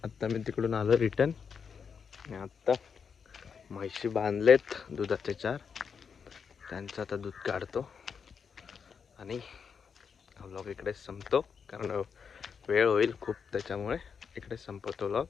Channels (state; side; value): quieter; right; 6.4 dB